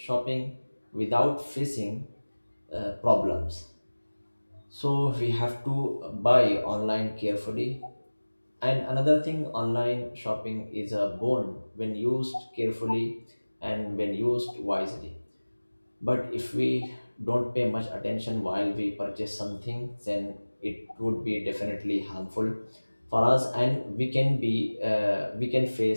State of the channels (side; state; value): both; inverted; correlation -1.00